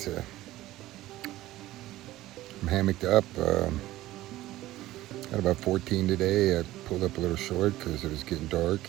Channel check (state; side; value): quieter; left; 16.0 dB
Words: I'm hammocked up. Got about 14 today. I pulled up a little short because it was getting dark,